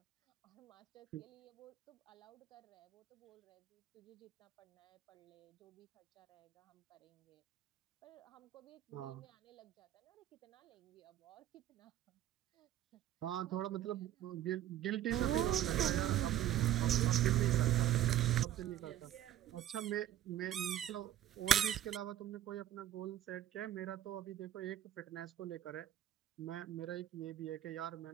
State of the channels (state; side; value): quieter; left; 12.1 dB